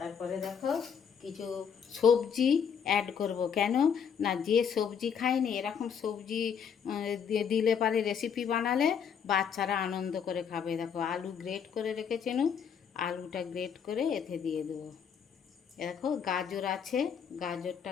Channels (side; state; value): right; quieter; 7.3 dB